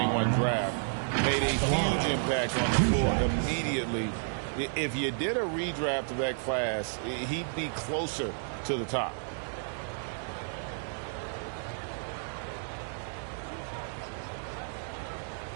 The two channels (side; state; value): left; silent; digital silence